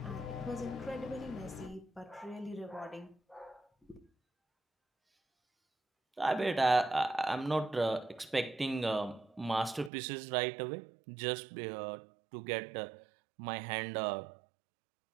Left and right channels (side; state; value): left; drops out; at 9.9 s